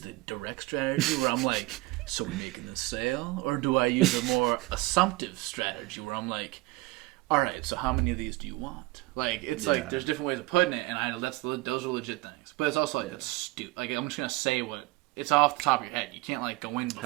the direct strategy where I'm like, so we're making the sale? Or do I use a more assumptive strategy where I'm like, all right, so how many of these do you want? Like, it's like, there's different ways of putting it, and those are legit things. But it's also like, it's stupid. Like, I'm just going to say it's off the top of your head. You can't, like, go in before.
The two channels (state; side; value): quieter; left; 21.1 dB